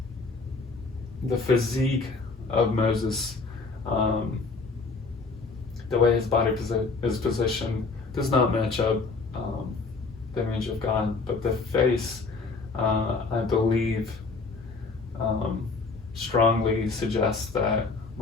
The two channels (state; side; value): quieter; right; 4.1 dB